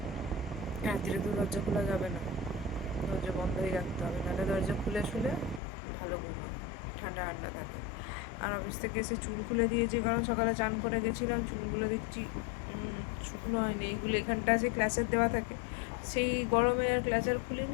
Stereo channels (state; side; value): drops out; right; at 5.6 s